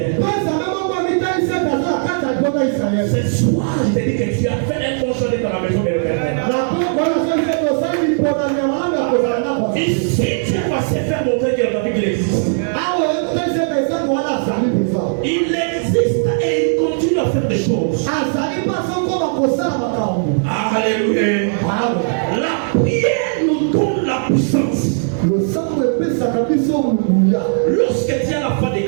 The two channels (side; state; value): left; silent; digital silence